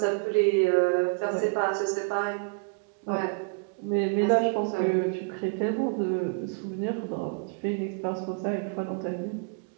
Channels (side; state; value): left; quieter; 33.9 dB